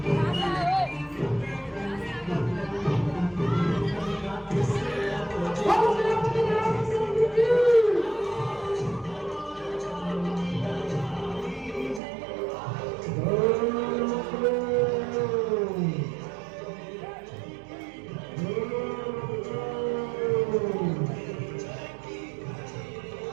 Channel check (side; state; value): left; drops out; at 12.0 s